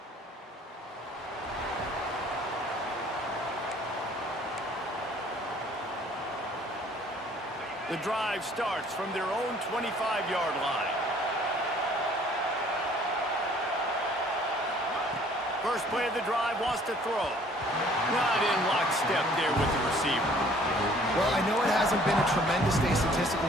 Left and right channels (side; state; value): both; normal; correlation 0.57